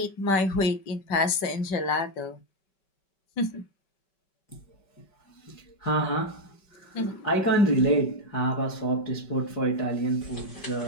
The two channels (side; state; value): right; late; 5.2 ms